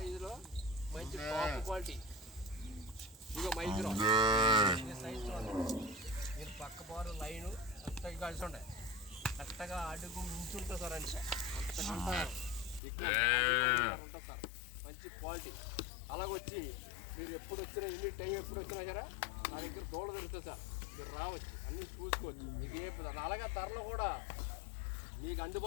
మంచి టాప్ క్వాలిటీ. ఇదిగో మైక్రో సైజు మీరు పక్క బారు లైను అంతగా కలిసి ఉండే కరెక్ట్గా అడుగు మించుంటుంది సార్. అంటే అంతకంటే ఎక్కువ ఉంటుంది సార్, మంచి క్వాలిటీ. అలాగొచ్చి మీరు ఎప్పుడు వచ్చినా ఎన్ని టైం ఎప్పుడు వచ్చినా సరే నా దగ్గర దోళ దొరుకుతుంది సార్. మీరు రావచ్చు, అన్నీ చూసుకోవచ్చు. మీకు ఏ అలాగే ధరలు కూడా మీకు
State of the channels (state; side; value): drops out; right; at 12.8 s